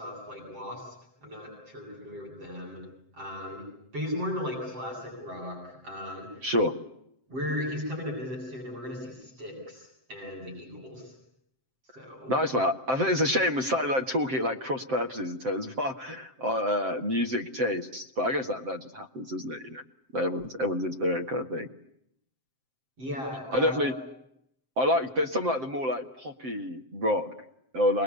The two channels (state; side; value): late; left; 7.6 ms